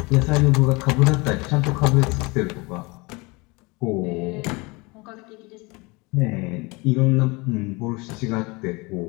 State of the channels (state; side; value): quieter; right; 25.9 dB